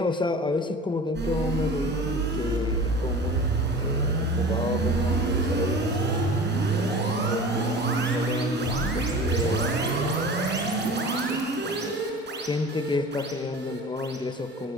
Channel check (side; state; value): both; normal; correlation 0.38